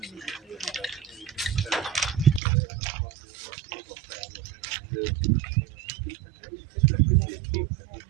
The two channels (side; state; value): left; drops out; at 2.4 s